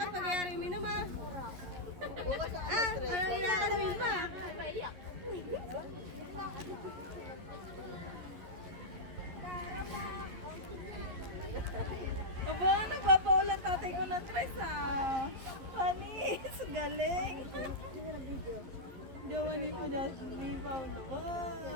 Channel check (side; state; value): left; late; 11 ms